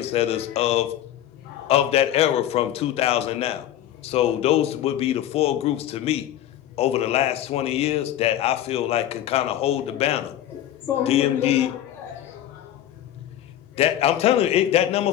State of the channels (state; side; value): quieter; right; 12.0 dB